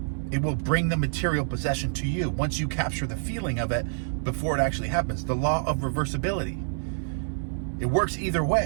It will bring the material possession to you once you capture the feeling of it before it actually happens. The law of reversibility. It works either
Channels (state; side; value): silent; left; 60 dB below the other